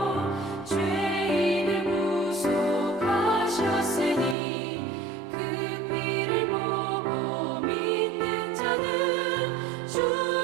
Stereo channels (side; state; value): left; drops out; at 4.4 s